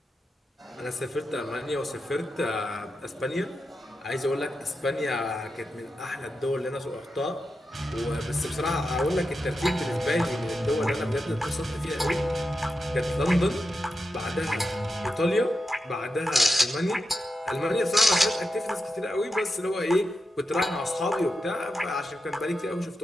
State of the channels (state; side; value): normal; both; correlation 0.89